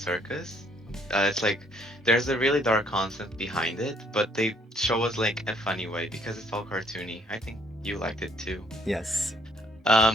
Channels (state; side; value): normal; both; correlation 0.65